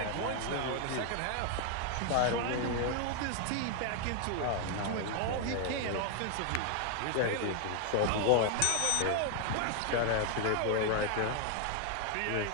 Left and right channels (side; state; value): both; different; correlation 0.00